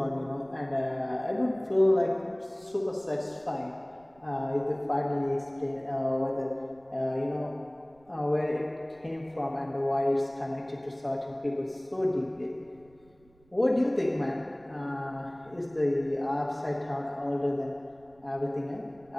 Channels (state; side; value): noise; right; rumble, 30 dB below the sound